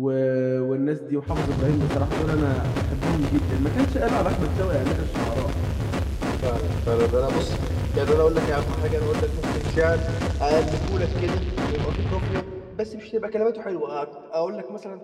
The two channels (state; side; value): identical; both; correlation 1.00